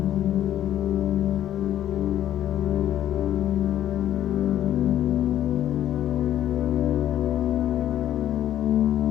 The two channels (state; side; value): quieter; right; 11.7 dB